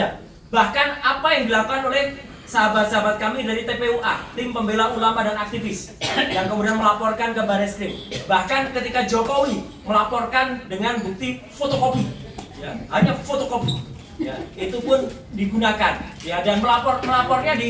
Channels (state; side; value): identical; both; correlation 1.00